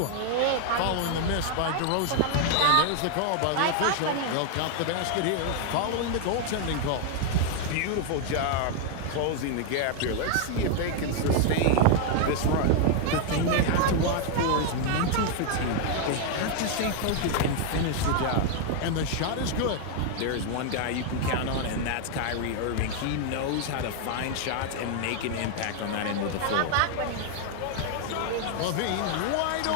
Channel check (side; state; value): both; different; correlation 0.00